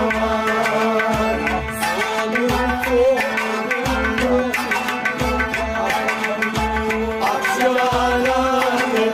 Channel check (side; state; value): both; identical; correlation 1.00